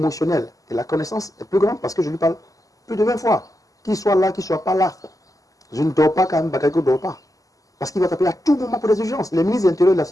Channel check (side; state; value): right; late; 0.17 ms